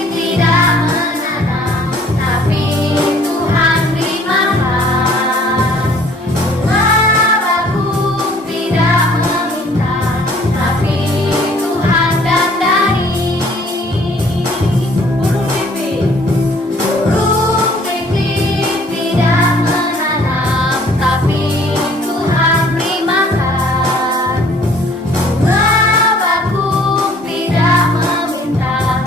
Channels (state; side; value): normal; both; correlation 0.57